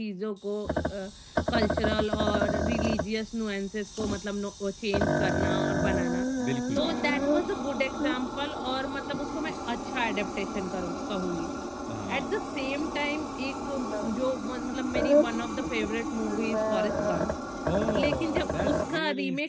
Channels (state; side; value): identical; both; correlation 1.00